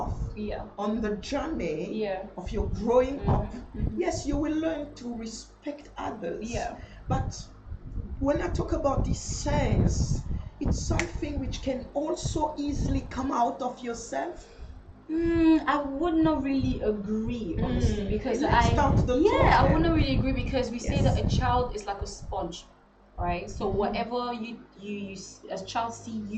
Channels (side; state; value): both; identical; correlation 1.00